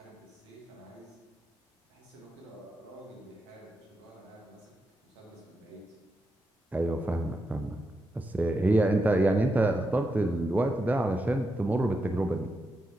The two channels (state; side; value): normal; both; correlation 0.86